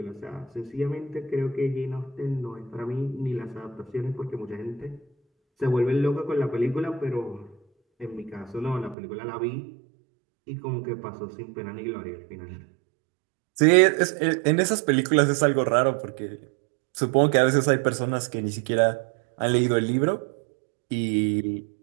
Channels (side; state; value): left; drops out; at 9.0 s